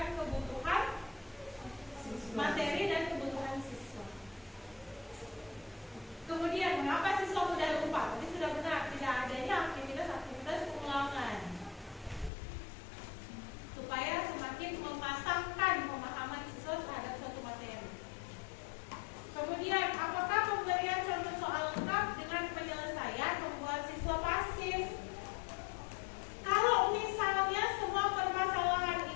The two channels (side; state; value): right; drops out; at 12.3 s